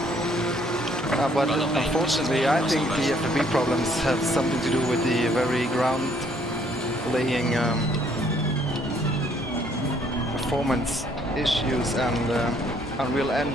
but unfortunately I think the FFB problems have something to do with the very ground laying performance issues and Unreal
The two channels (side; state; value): both; normal; correlation 0.65